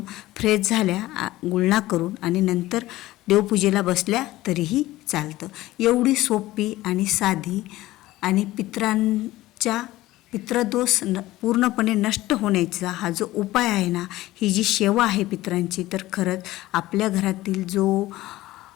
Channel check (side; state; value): right; quieter; 16.9 dB